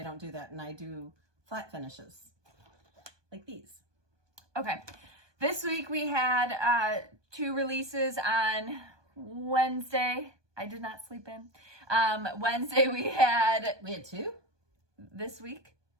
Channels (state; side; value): late; left; 1.2 ms